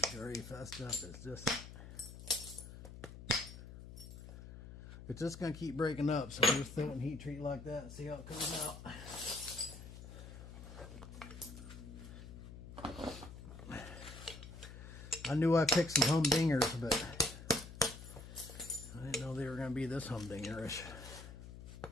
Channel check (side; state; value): left; noise; hum, 13 dB below the sound